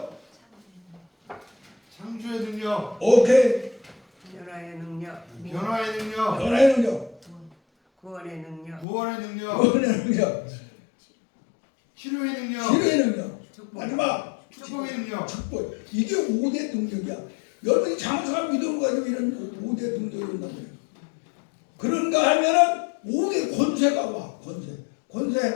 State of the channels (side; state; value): right; drops out; at 8.8 s